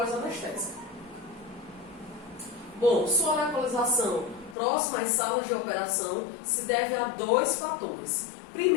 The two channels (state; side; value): drops out; right; at 4.5 s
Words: Bom, sua localização próxima às salas de operação se deve a dois fatores.